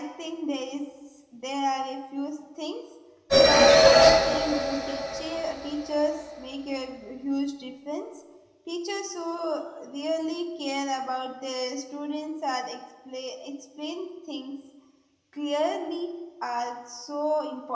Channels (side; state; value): both; identical; correlation 1.00